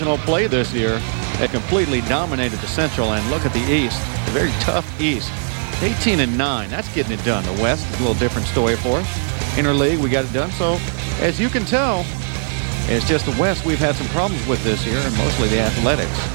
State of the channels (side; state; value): left; silent; 63 dB below the other